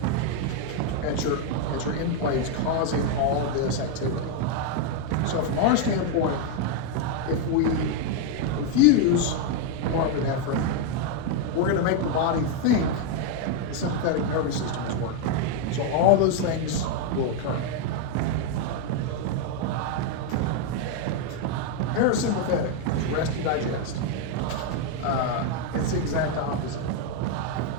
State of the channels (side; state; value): both; different; correlation 0.01